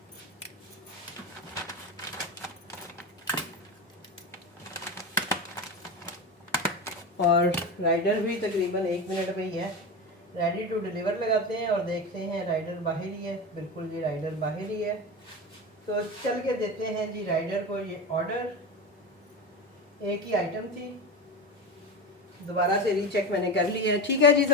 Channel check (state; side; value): normal; both; correlation 0.22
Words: और राइडर भी तकरीबन 1 मिनट में ही है, रेडी टू डिलीवर लगाते हैं और देखते हैं राइडर बाहर ही है। बिल्कुल जी राइडर बाहर ही है, तो चल के देते हैं जी राइडर को ये ऑर्डर। एक ही आइटम थी, दोबारा से रीचेक मैंने कर लिया है। ठीक है जी,